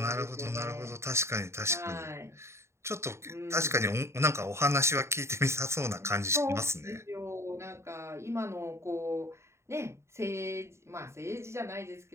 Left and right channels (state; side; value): late; left; 0.13 ms